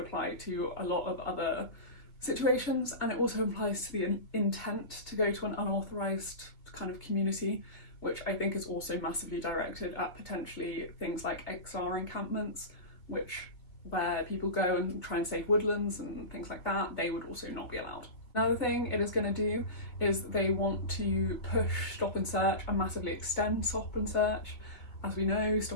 to a lot of other situations, and it also applies to the intent to go to an unauthorised kind of community, which I think is also massively directed at potentially things like XR encampments, where people go and try and save woodlands and things like that. They would also not be allowed. Another thing it is going to do is they want to push stop and search and massively extend stop and search. As we know,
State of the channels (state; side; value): late; right; 2.4 ms